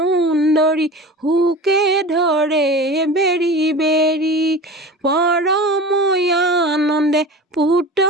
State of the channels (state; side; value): normal; both; correlation 0.34